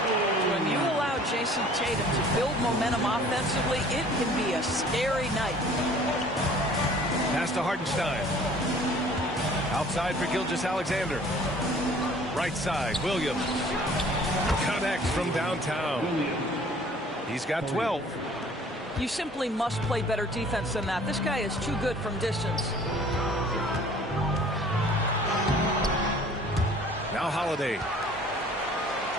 When you allow Jason Tatum to build momentum offensively, it can be a scary night. Pass to Hartenstein. Outside for Gilgeous-Alexander. Right side, Williams. Connects from downtown. He's got 12. You simply must play better defense than that. This guy is too good from distance. Now Holiday.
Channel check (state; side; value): normal; both; correlation 0.52